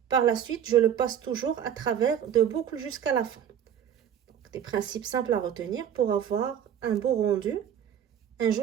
Par la suite, je le passe toujours à travers 2 boucles jusqu'à la fin. Donc, des principes simples à retenir pour avoir un beau rendu, un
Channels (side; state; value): left; quieter; 9.2 dB